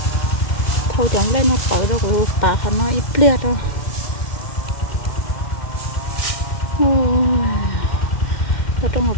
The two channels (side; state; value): right; late; 2.1 ms